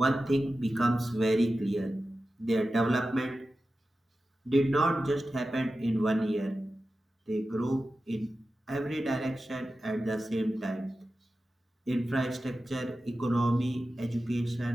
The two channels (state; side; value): normal; both; correlation 0.93